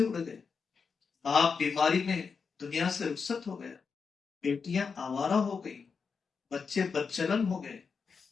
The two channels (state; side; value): quieter; right; 5.5 dB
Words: اڑ گئے باپ بیماری میں دنیا سے رخصت ہو گیا بیٹیاں آوارہ ہو گئی بچے بدچلن ہو گئے